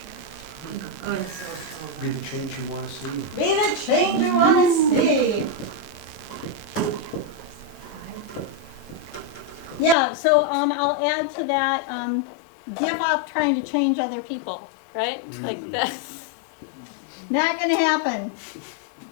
Go to social events. Be the change you want to see. Be the change you wanna see. Yeah, so, I'll add to that, give up trying to change other people, right? Like that's not gonna happen.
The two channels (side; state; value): right; drops out; at 10.0 s